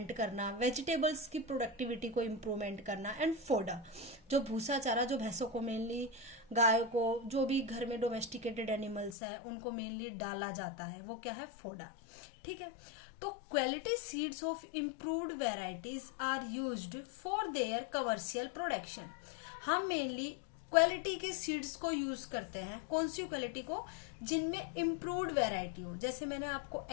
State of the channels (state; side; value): drops out; right; at 9.2 s